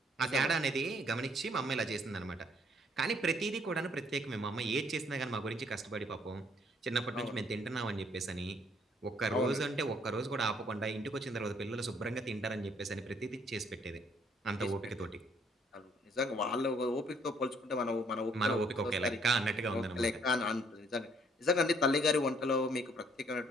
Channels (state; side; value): normal; both; correlation 0.65